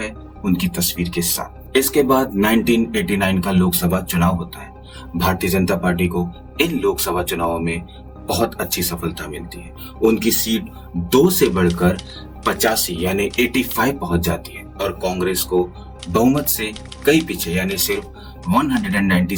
उनकी तस्वीर के साथ। इसके बाद 1989 का लोकसभा चुनाव होता है। भारतीय जनता पार्टी को इन लोकसभा चुनावों में बहुत अच्छी सफलता मिलती है। उनकी सीट 2 से बढ़कर 85 यानी 85 पहुंच जाती है और कांग्रेस को बहुमत से कई पीछे यानी सिर्फ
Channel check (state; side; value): identical; both; correlation 1.00